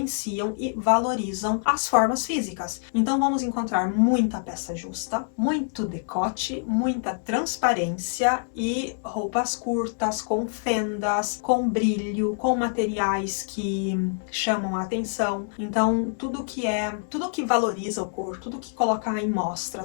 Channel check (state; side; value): silent; right; digital silence